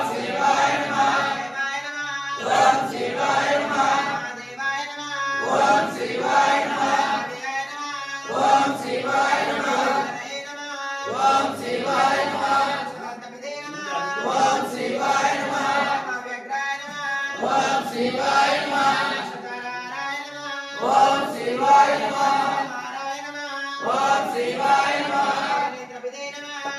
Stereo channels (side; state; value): both; identical; correlation 1.00